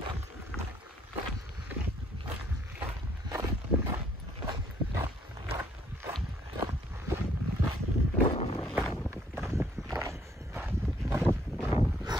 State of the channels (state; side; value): normal; both; correlation 0.66